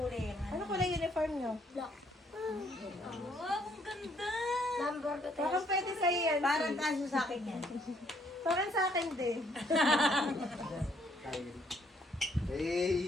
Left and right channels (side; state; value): both; normal; correlation 0.68